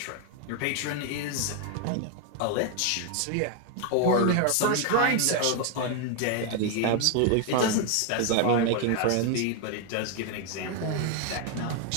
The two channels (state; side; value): different; both; correlation 0.01